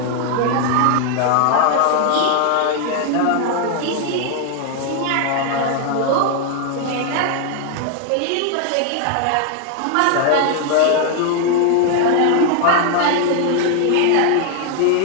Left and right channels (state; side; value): different; both; correlation 0.00